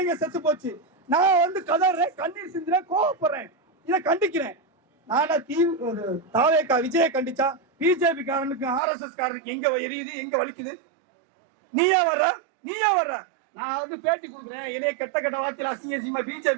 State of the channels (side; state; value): left; drops out; at 8.8 s